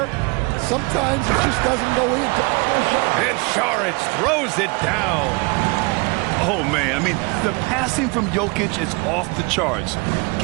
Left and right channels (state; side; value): quieter; left; 28.5 dB